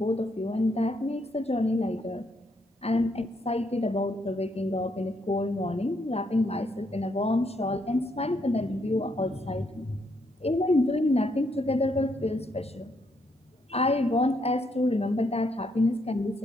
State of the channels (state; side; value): normal; both; correlation 0.75